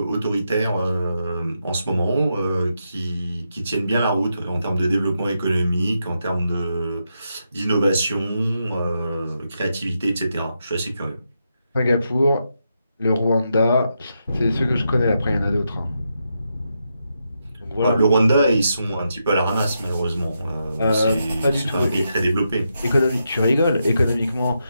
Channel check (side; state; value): both; inverted; correlation -0.84